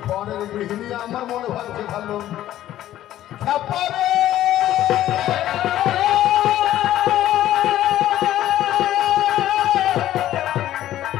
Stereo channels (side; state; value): right; quieter; 13.1 dB